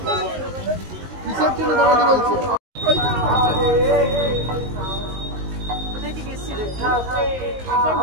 কিসের জন্য দাঁড়াতে বলছে?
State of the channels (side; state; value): left; late; 19 ms